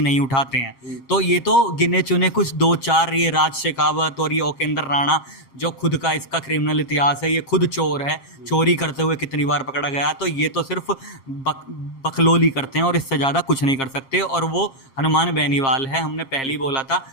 उठाते हैं। तो ये तो गिने चुने कुछ 2-4, ये राज शेखावत और ये ओकेंद्र राणा, जो खुद का इसका क्रिमिनल इतिहास है, ये खुद चोर है, चोरी करते हुए कितनी बार पकड़ा गया। तो ये तो सिर्फ बकलोली करते हैं और इससे ज़्यादा कुछ नहीं कर सकते। और वो हनुमान बेनीवाल है, हमने पहले ही बोला था,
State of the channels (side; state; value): right; late; 7.5 ms